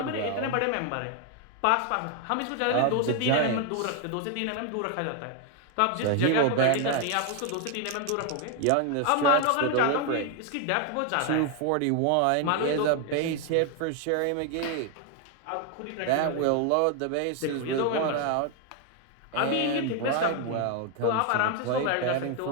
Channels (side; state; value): both; different; correlation 0.01